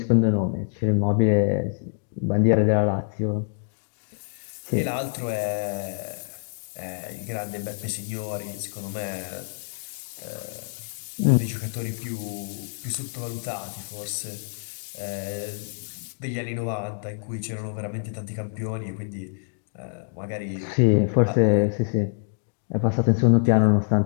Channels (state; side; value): silent; right; digital silence